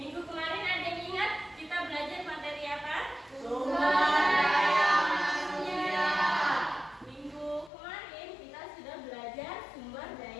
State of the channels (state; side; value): drops out; right; at 7.7 s